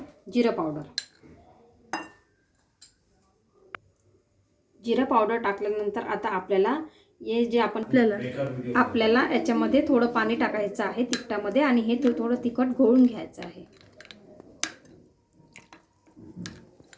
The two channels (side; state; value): both; identical; correlation 1.00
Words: जिरा पावडर. जिरा पावडर टाकल्यानंतर आता आपल्याला हे जे आपल्याला याच्यामध्ये थोडं पाणी टाकायचं आहे तिखटामध्ये आणि हे थोडं तिखट घोळून घ्यायचं आहे.